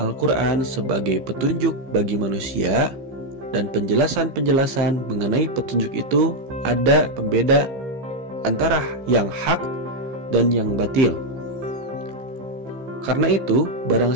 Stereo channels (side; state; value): left; late; 15 ms